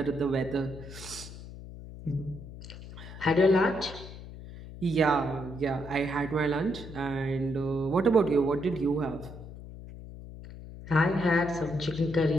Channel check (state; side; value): noise; left; hum, 14 dB below the sound